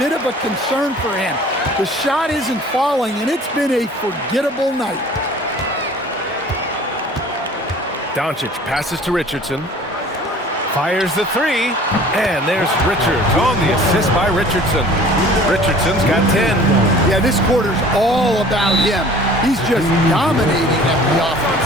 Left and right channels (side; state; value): both; normal; correlation 0.48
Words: of a concern for him. The shot isn't falling, and it's been a forgettable night. Doncic passes to Richardson. Fires the 3, and there's Richards on the assist by Richardson. Richardson's got 10. Yeah, this quarter's all about him. He's just dominating at the